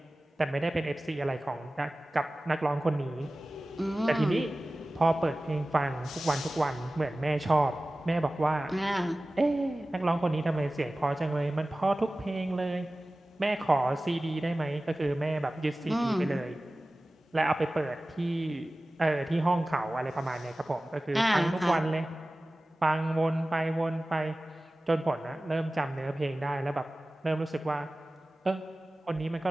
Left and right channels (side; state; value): both; normal; correlation 0.97